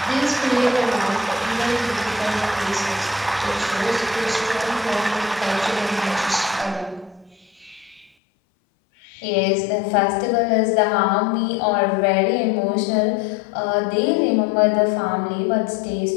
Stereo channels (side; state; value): right; drops out; at 8.1 s